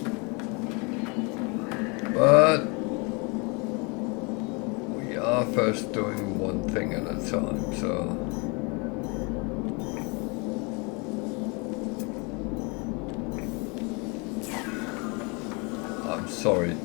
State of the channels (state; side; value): quieter; right; 30.7 dB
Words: but we are first doing one thing at a time, so I'm sorry,